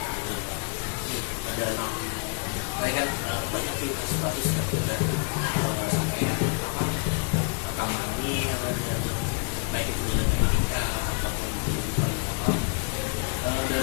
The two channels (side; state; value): right; quieter; 37.1 dB